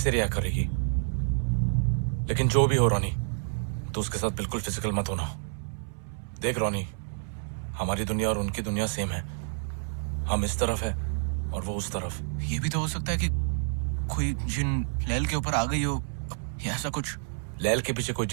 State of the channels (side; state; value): left; silent; 59 dB below the other